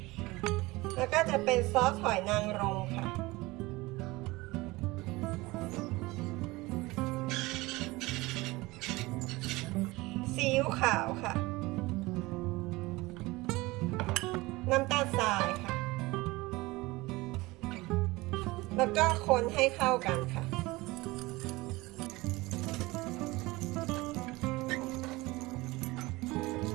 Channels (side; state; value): left; quieter; 21.3 dB